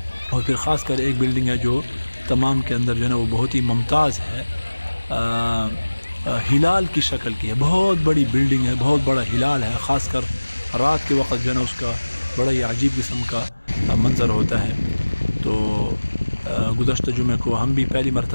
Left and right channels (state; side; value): inverted; both; correlation -1.00